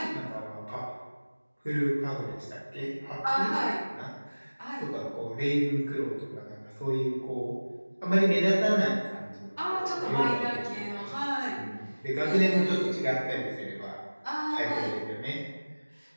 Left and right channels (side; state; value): both; inverted; correlation -1.00